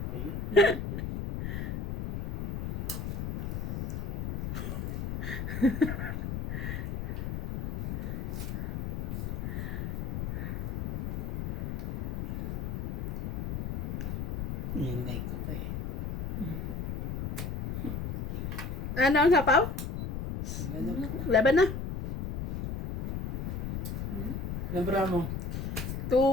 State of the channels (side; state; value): left; noise; rumble, 3 dB below the sound